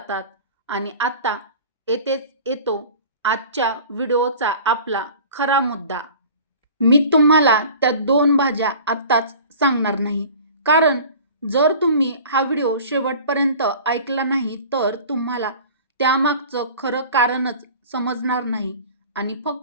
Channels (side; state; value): both; inverted; correlation -0.42